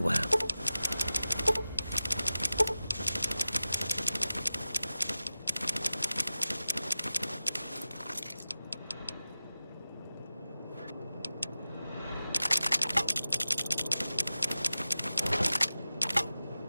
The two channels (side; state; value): both; inverted; correlation -0.94